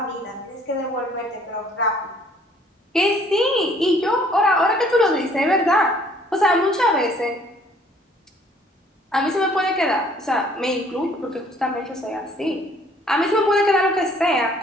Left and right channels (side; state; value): both; normal; correlation 0.59